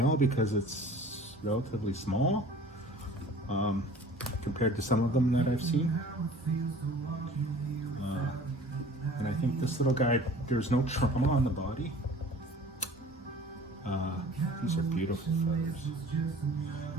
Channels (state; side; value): normal; both; correlation 0.46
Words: because it's relatively small compared to some of them that I've seen. And I think this little guy, there's no trauma on the body. These are beautiful feathers.